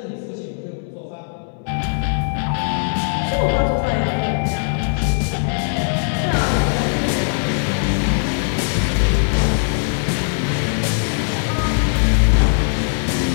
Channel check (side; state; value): right; silent; digital silence